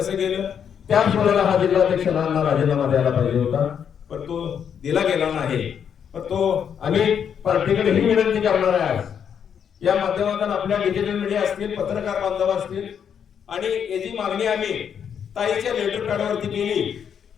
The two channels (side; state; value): right; quieter; 8.0 dB